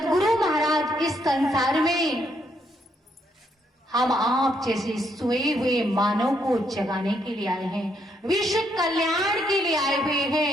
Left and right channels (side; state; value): both; normal; correlation 0.74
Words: महाराज इस संसार में हम आप जैसे सोए हुए मानव को जगाने के लिए आए हैं, विश्व कल्याण के लिए आए हुए